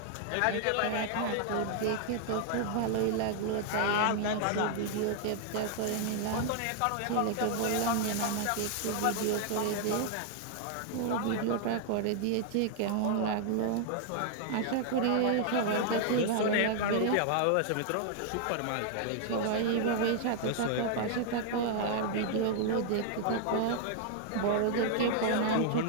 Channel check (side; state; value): both; different; correlation 0.00